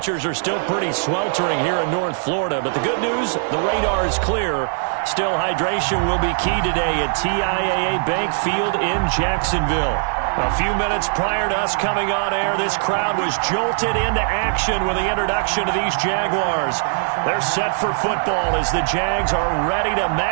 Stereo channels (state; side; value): silent; left; digital silence